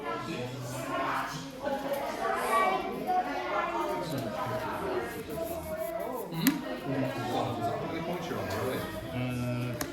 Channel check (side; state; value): both; identical; correlation 1.00